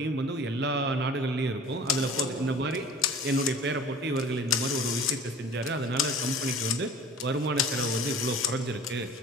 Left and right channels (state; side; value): normal; both; correlation 0.43